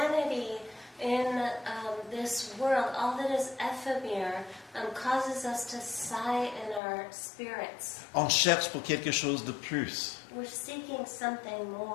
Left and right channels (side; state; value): right; drops out; at 6.8 s